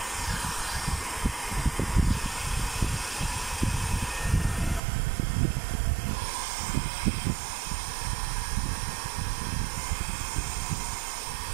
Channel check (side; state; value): left; drops out; at 4.8 s